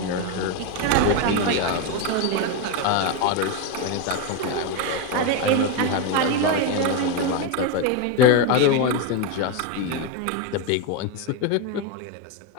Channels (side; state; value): both; different; correlation 0.03